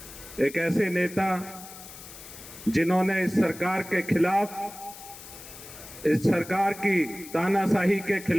एक ऐसे नेता जिन्होंने इस सरकार के खिलाफ, इस सरकार की तानाशाही के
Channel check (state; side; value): noise; left; hiss, 15 dB below the sound